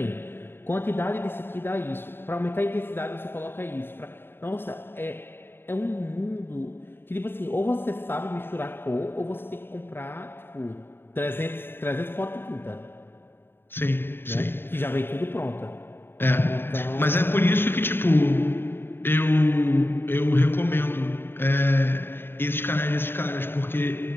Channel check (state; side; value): late; right; 0.11 ms